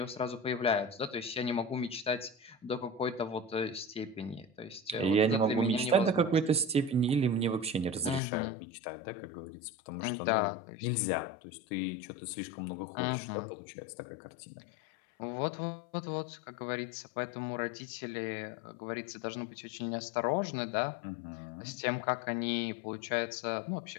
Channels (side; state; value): right; drops out; at 8.2 s